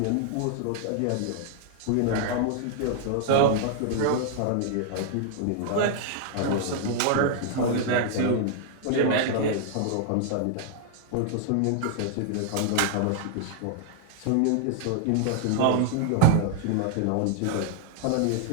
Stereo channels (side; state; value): both; different; correlation 0.00